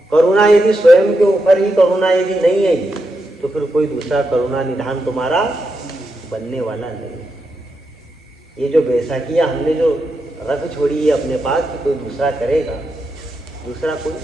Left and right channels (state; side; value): normal; both; correlation 0.85